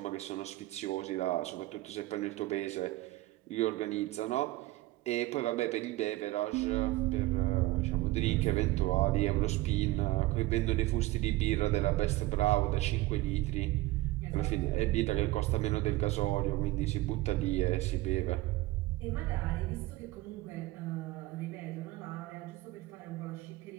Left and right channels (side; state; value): left; quieter; 18.3 dB